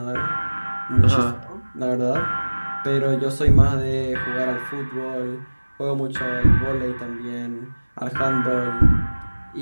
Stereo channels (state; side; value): inverted; both; correlation -1.00